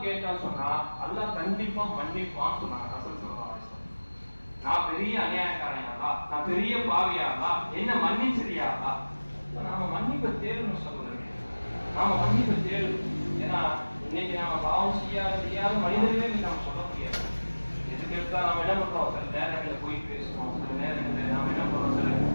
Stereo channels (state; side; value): inverted; both; correlation -1.00